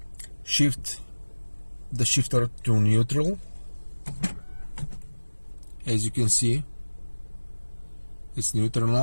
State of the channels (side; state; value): both; inverted; correlation -1.00